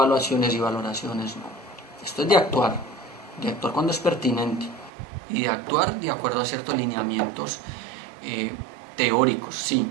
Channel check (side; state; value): left; drops out; at 4.9 s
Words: y valoraciones, no. Esto es de actuar cuando es pertinente y de actuar de acuerdo a ciertos lineamientos teóricos, sí,